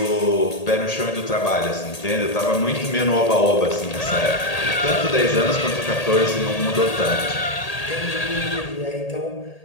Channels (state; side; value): late; right; 1.8 ms